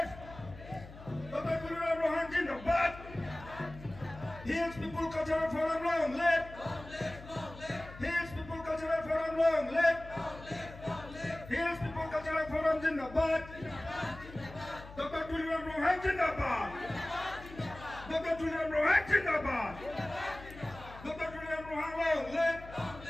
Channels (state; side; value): noise; left; hum, 16 dB below the sound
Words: Dr. Tuliram Rohan Zindabad. Hills People Cultural Forum Long, left. Hills People Cultural Forum Long, left. Hills People Cultural Forum Zindabad. Dr. Tuliram Rohan Zindabad. Dr. Tuliram Rohan Zindabad. Dr. Tuliram Rohan Long, left.